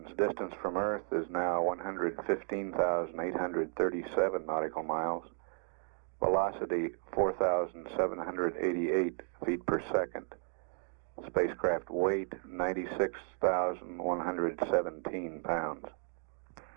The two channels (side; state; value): left; silent; 55 dB below the other